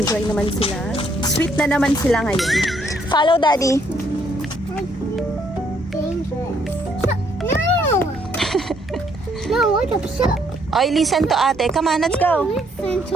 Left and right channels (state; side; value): normal; both; correlation 0.69